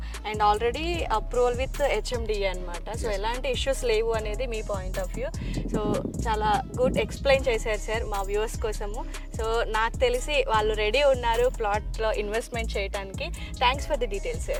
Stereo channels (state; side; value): identical; both; correlation 1.00